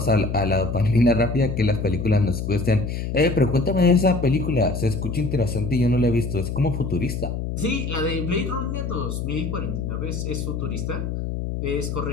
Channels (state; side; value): noise; left; hum, 4 dB below the sound